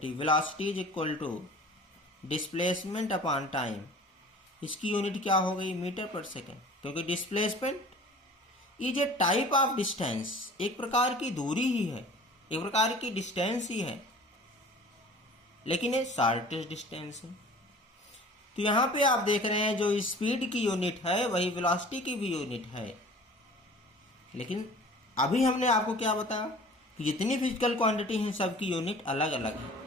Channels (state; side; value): normal; both; correlation 0.45